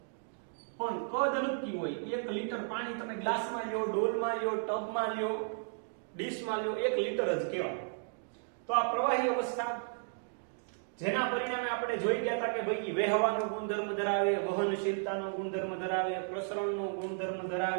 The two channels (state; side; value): silent; left; digital silence